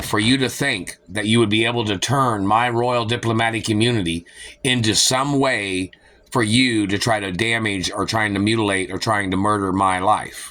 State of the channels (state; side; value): identical; both; correlation 1.00